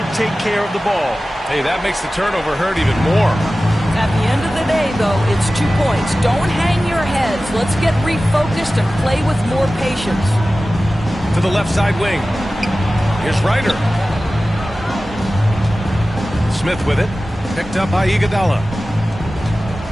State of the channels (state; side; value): normal; both; correlation 0.96